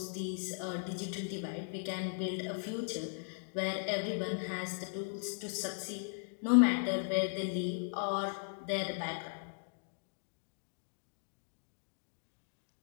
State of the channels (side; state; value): right; silent; digital silence